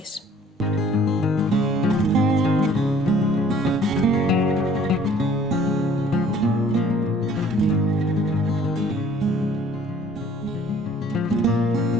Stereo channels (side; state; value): both; normal; correlation 0.56